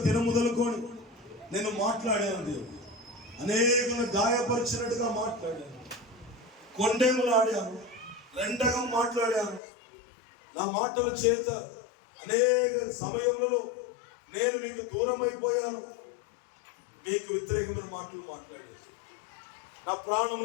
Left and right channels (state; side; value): drops out; right; at 9.6 s